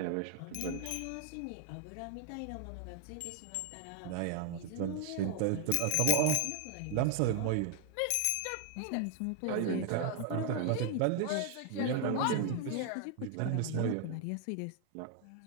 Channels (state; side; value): different; both; correlation 0.00